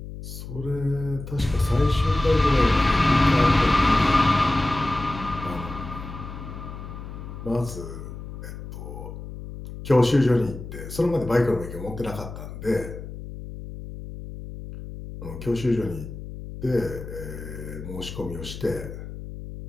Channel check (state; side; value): noise; left; hum, 11 dB below the sound